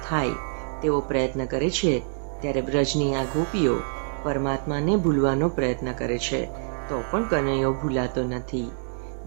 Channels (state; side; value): silent; left; digital silence